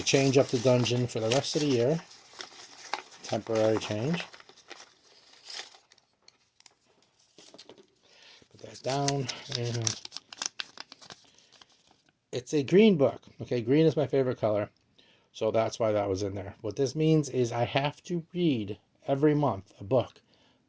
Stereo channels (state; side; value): identical; both; correlation 1.00